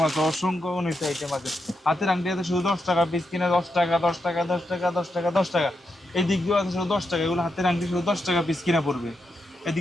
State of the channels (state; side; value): normal; both; correlation 0.84